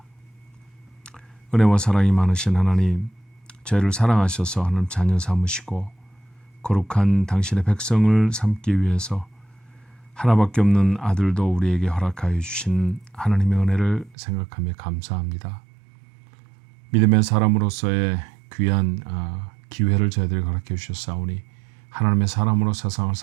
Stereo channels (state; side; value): drops out; left; at 14.2 s